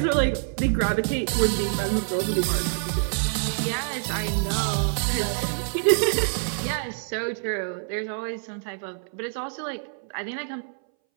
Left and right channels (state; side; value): silent; left; 61 dB below the other